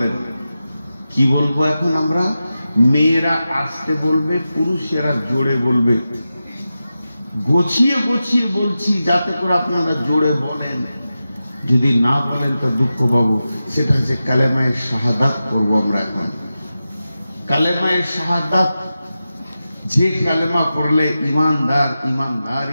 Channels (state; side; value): inverted; both; correlation -0.92